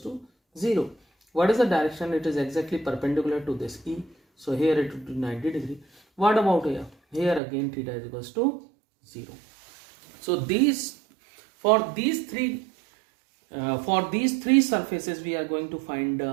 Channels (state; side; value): drops out; left; at 7.4 s